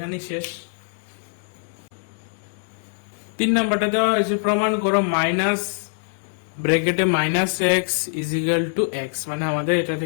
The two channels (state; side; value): silent; right; 63 dB below the other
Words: শেষ। 3 নাম্বারটা দেওয়া হয়েছে, প্রমাণ করো মাইনাস ব্র্যাকেটে -x = x, মানে আমাদের এটা